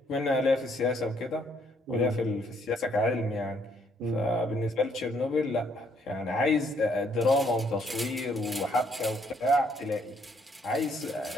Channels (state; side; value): normal; both; correlation 0.68